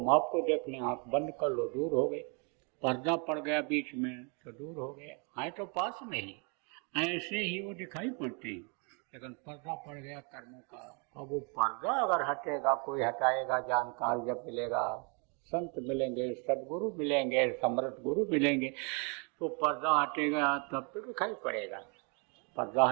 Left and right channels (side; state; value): left; quieter; 35.4 dB